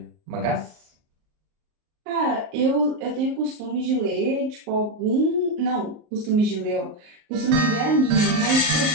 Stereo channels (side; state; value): left; late; 38 ms